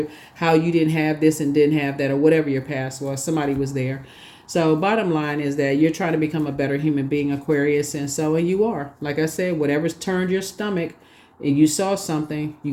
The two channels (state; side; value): identical; both; correlation 1.00